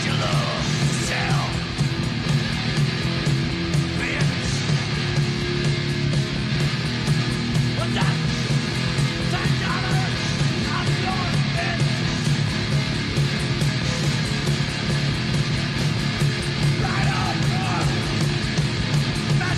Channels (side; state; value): both; identical; correlation 1.00